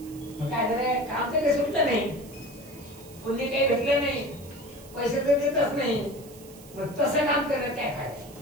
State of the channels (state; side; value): noise; right; hiss, 21 dB below the sound